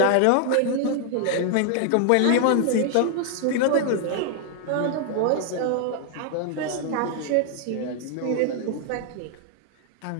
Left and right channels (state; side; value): different; both; correlation 0.00